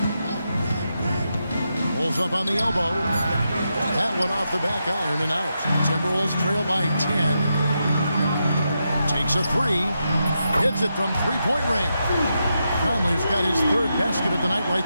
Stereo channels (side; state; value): both; inverted; correlation -0.85